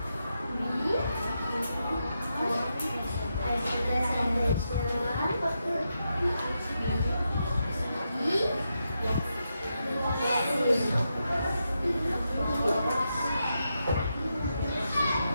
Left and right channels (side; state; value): both; inverted; correlation -0.85